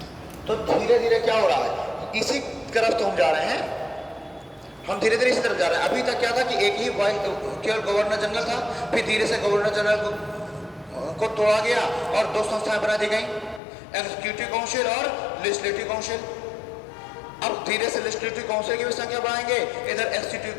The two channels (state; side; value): drops out; right; at 13.6 s